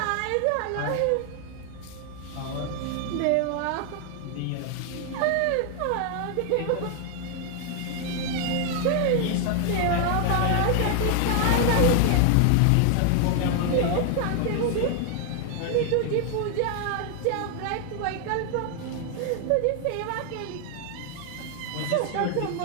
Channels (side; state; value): both; different; correlation 0.00